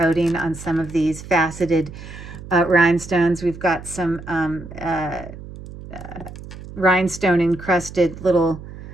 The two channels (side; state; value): right; noise; hum, 14 dB below the sound